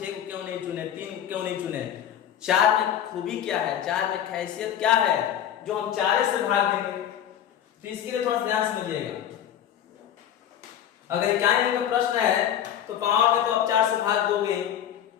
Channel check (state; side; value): quieter; right; 10.2 dB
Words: को क्यों नहीं चुने, 3 को क्यों नहीं चुने। 4 में खूबी क्या है, 4 में खासियत क्या है जो हम 4 से भाग देंगे। तो इसके लिए थोड़ा ध्यान समझिएगा। अगर इकाई अंक का प्रश्न है तो पावर में तो आप 4 से भाग दोगे,